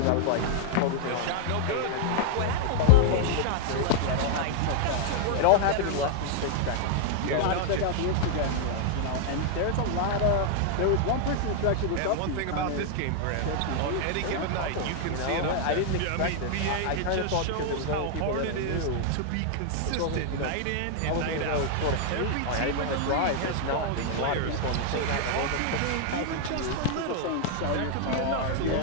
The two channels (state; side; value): different; both; correlation 0.00